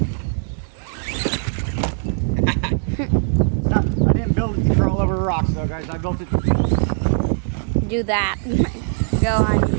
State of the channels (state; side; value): silent; left; 65 dB below the other